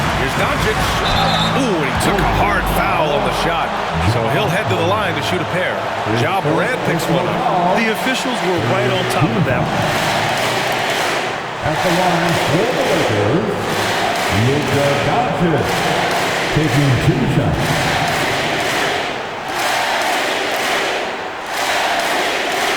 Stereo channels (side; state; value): both; identical; correlation 1.00